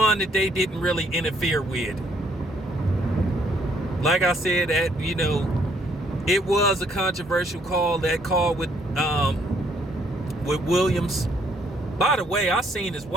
that they didn't really interfere with. Like I said, it was a controversial call. That call with Williams. By the way, I seen his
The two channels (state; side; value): normal; both; correlation 0.67